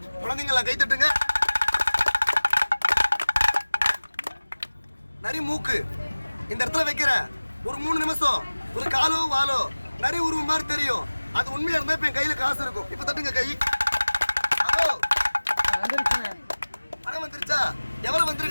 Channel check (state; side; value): inverted; both; correlation -1.00